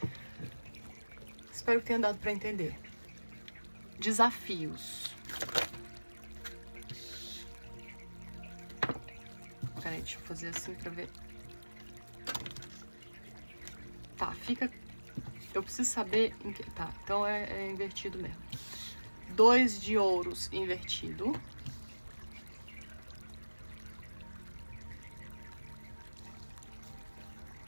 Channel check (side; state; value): both; inverted; correlation -1.00